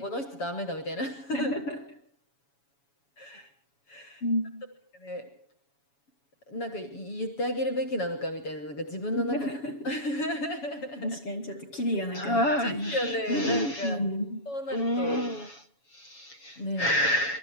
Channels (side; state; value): right; late; 7.1 ms